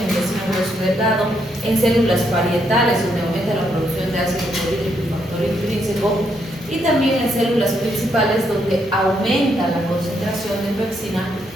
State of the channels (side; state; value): both; normal; correlation 0.76